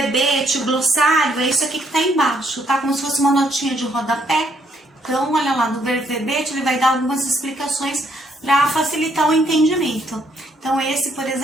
glossário, é isso aqui que está embaixo, tá? Como se fosse uma notinha de rodapé. Então, olha lá, no verbete ele vai dar algumas explicações para facilitar o entendimento. Então, esse, por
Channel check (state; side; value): normal; both; correlation 0.70